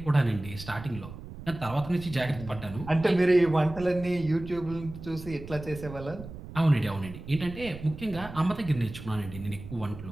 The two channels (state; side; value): noise; right; rumble, 13 dB below the sound